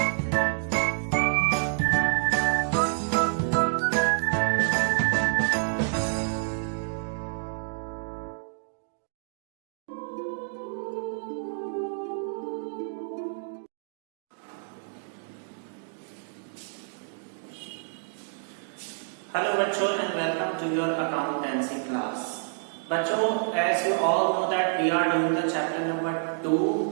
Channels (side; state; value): left; silent; digital silence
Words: बच्चों and welcome to your accountancy class. बच्चों, as you all know that we are doing the chapter number